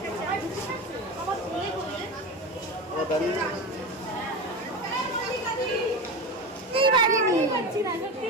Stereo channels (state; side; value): normal; both; correlation 0.24